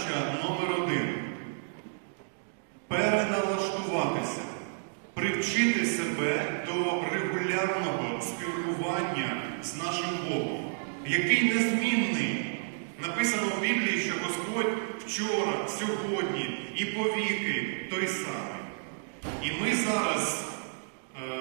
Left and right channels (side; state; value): left; silent; digital silence